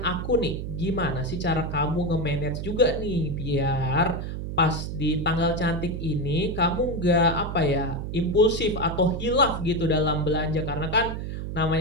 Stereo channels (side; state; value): right; noise; hum, 5 dB below the sound